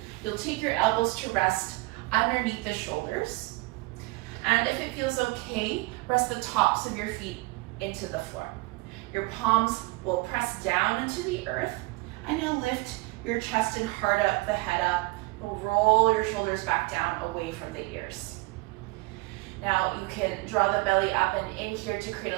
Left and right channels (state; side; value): quieter; left; 23.6 dB